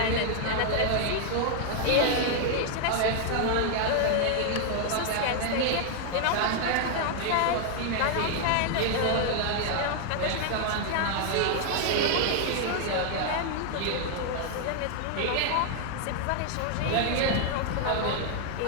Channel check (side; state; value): both; different; correlation 0.00